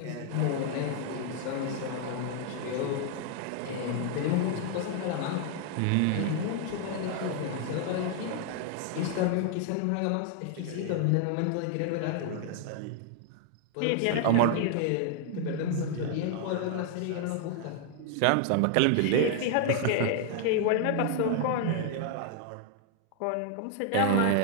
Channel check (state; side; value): different; both; correlation 0.00